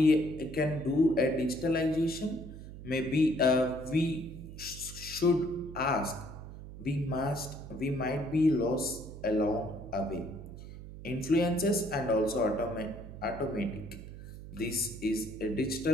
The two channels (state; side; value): noise; right; hum, 13 dB below the sound